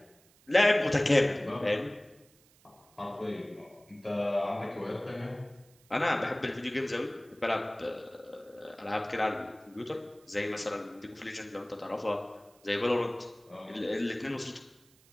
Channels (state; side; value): noise; right; hiss, 29 dB below the sound